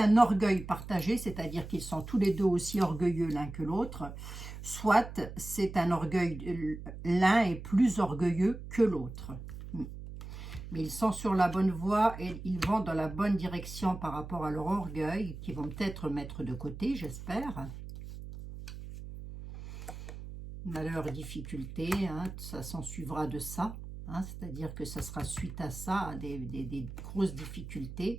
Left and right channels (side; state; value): right; noise; hum, 11 dB below the sound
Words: orgueil partagé, c'est-à-dire qu'ils sont tous les deux aussi orgueilleux l'un que l'autre, soit c'est un orgueil, l'un est plus orgueilleux que l'autre. Mais ils sont sur la bonne voie et ils vont dans la bonne direction par rapport à leur orgueil, qu'ils vont peut-être mettre de côté, j'espère. Malheur, difficulté, hein, ça s'en suivra de ça. Hein, c'est-à-dire que ça sera suite à ça, à des grosses